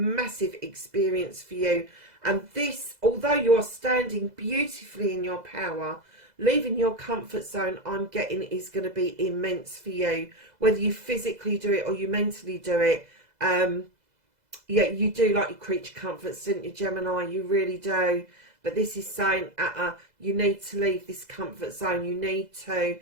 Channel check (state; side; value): late; left; 2.0 ms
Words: experience for you. And this, although you are standing beautifully in your power, leaving your comfort zone, I'm getting, is going to be immense for you. Whether you physically do it or you mentally do it. Yeah, you do like your creature comforts, don't you, Gemini? You really do. But this is saying, you need to leave this comfort zone. You need to